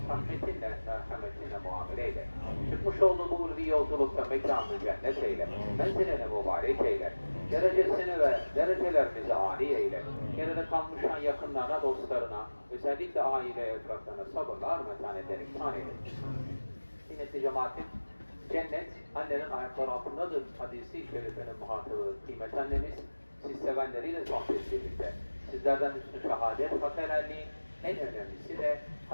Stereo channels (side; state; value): both; inverted; correlation -1.00